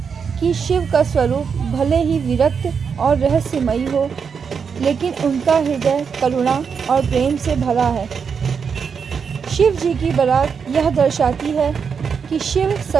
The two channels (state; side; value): quieter; left; 6.3 dB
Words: कि शिव का स्वरूप भले ही विरक्त और रहस्यमयी हो, लेकिन उनका हृदय करुणा और प्रेम से भरा है। शिव जी की बारात यह दर्शाती है कि शिव